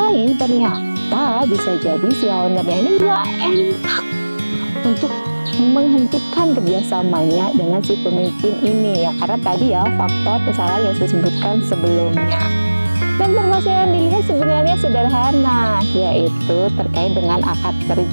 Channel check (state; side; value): inverted; both; correlation -1.00